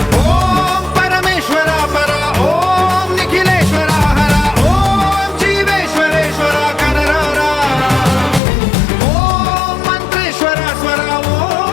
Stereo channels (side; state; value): right; drops out; at 8.4 s